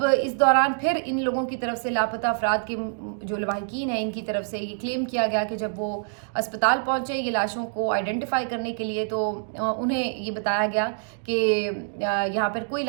اس دوران پھر ان لوگوں کی طرف سے لاپتہ افراد کے جو لواحقین ہیں ان کی طرف سے یہ کلیم کیا گیا کہ جب وہ اسپتال پہنچے یہ لاشوں کو آئیڈینٹیفائی کرنے کے لیے تو انہیں یہ بتایا گیا کہ یہاں پر کوئی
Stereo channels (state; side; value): silent; left; digital silence